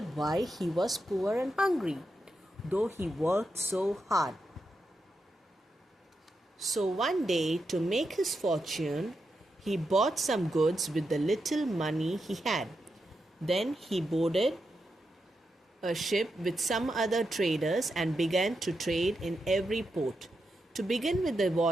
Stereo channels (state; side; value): normal; both; correlation 0.86